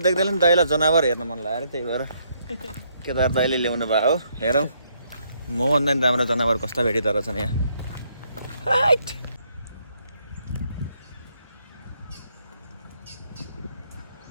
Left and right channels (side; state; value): both; inverted; correlation -0.72